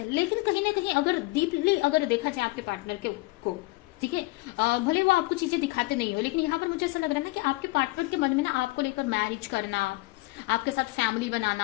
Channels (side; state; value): right; quieter; 22.5 dB